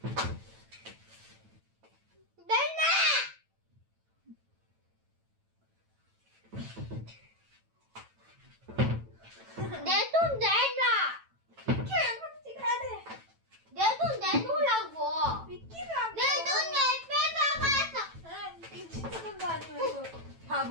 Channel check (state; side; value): late; left; 9.1 ms